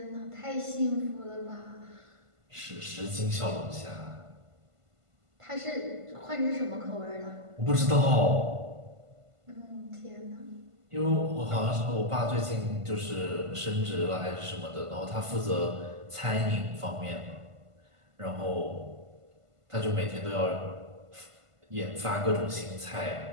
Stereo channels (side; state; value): left; late; 1.5 ms